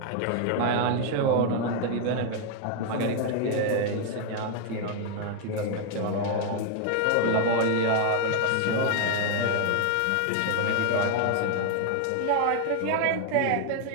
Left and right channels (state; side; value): different; both; correlation 0.00